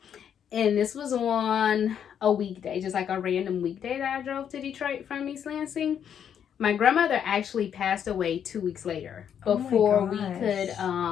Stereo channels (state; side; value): quieter; right; 8.6 dB